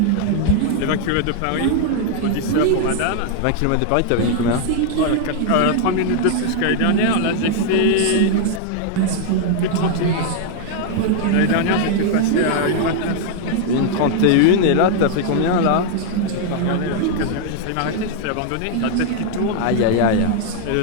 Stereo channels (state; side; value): different; both; correlation 0.00